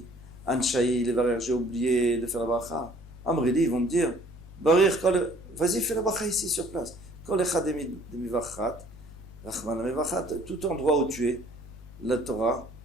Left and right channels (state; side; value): noise; right; rumble, 28 dB below the sound